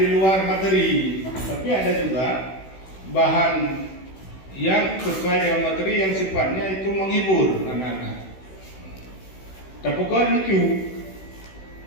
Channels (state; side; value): late; right; 16 ms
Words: di luar materi, tapi ada juga bahan yang sesuai dengan materi yang sifatnya itu menghibur anak-anak. Tapi bukan lucu,